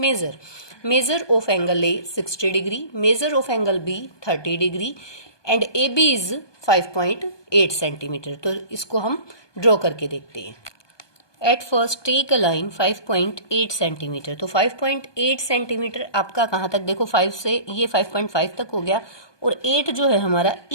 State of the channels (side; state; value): right; late; 1.2 ms